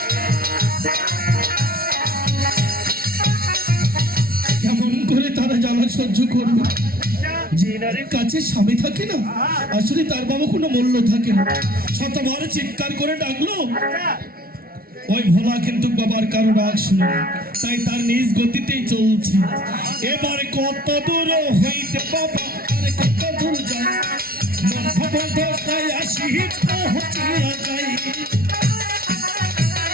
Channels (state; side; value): late; left; 0.44 ms